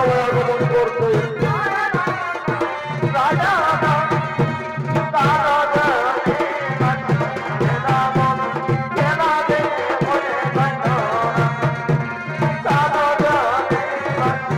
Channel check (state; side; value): identical; both; correlation 1.00